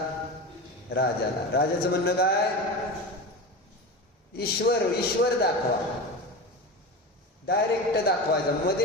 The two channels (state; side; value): normal; both; correlation 0.26